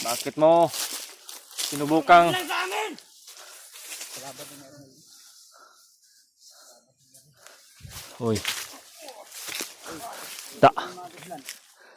Bakit mo sinubukang Lang sa amin! Hoy. Da.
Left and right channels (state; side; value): identical; both; correlation 1.00